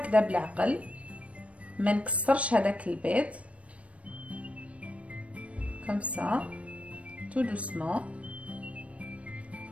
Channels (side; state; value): left; late; 0.064 ms